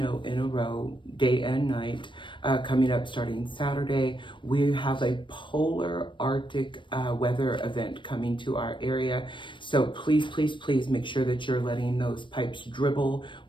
in a row, day and night, coming up starting Saturday. We have a polar Arctic weather event coming to our area. So please, please, please make sure that you're letting those pipes dribble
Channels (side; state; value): right; late; 0.24 ms